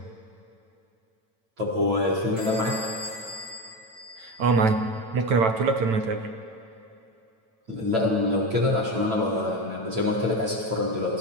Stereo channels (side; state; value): left; late; 9.0 ms